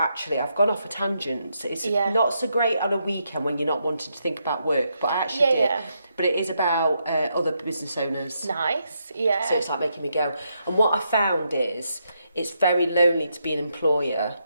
I've gone off a tangent. It's not so great on a weekend when you're not wanting to think about work, but I actually did. Yeah. But it is about other business owners. Nice, yeah. So it's like making me go. And what I found is it's very lonely to be an employer.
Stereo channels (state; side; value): inverted; both; correlation -0.80